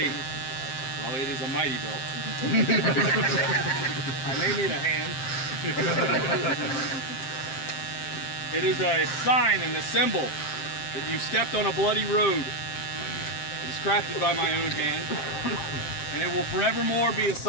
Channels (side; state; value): right; late; 7.6 ms